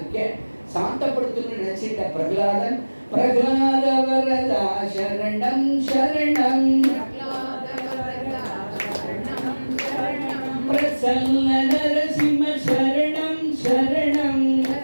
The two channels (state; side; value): inverted; both; correlation -1.00